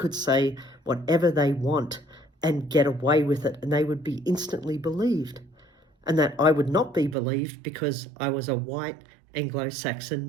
say whatever they want and get away with it, and they would be instantly believed, and that I would not be believed because I was a white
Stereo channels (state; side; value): drops out; left; at 7.2 s